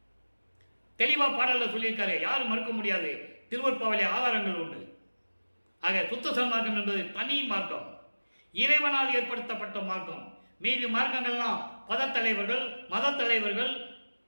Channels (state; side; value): inverted; both; correlation -1.00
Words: தெளிவாக பாடலில் சொல்லியிருக்காரு, யாரும் மறுக்க முடியாது, திருவற்பாவிலே ஆதாரங்கள் உண்டு. ஆக சுத்த சன்மார்க்கம் என்பது தனி மார்க்கம், இறைவனால் ஏற்படுத்தப்பட்ட மார்க்கம். மீதி மார்க்கங்கள்லாம் பதத்தலைவர்கள், மத தலைவர்கள்